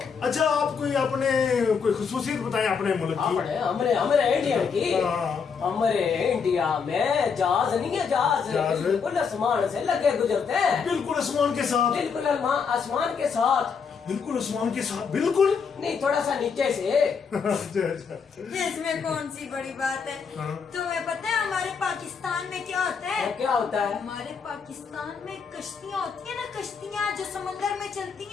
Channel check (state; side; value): quieter; right; 6.0 dB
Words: अच्छा, आप कोई अपने कोई खुसूसियत बताएं अपने मुल्क की। हमारे इंडिया की, हाँ। हमारे इंडिया में जहाज नहीं है, जहाज बिल्कुल आसमान से लगे गुजरते हैं। बिल्कुल आसमान के साथ? बिल्कुल आसमान के साथ। बिल्कुल आसमान के साथ? बिल्कुल नहीं, थोड़ा सा नीचे से। अच्छा। इसमें कौन सी बड़ी बात है? हाँ। तुम्हें पता है हमारे पाकिस्तान में क्या होता है? क्या होता है? हमारे पाकिस्तान में कश्तियाँ होती है ना, कश्तियाँ जो समंदर में चलती